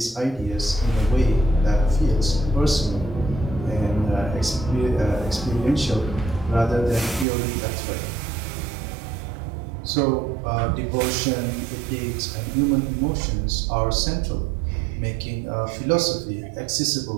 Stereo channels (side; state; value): left; drops out; at 7.2 s